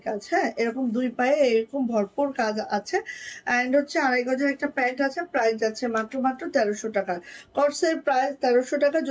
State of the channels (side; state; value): both; identical; correlation 1.00